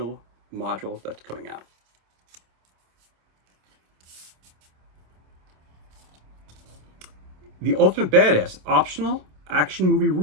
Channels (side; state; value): left; late; 27 ms